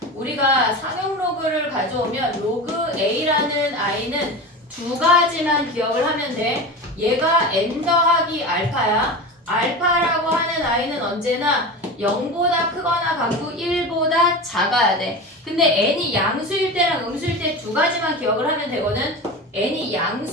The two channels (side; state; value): both; normal; correlation 0.28